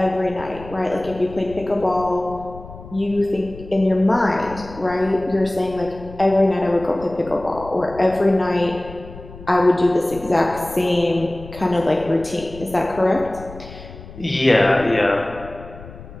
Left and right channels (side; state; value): left; noise; rumble, 16 dB below the sound